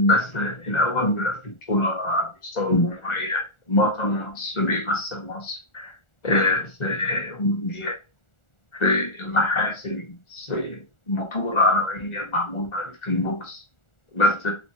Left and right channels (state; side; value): late; right; 1.4 ms